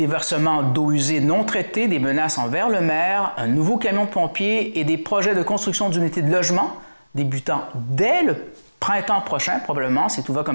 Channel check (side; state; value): both; inverted; correlation -1.00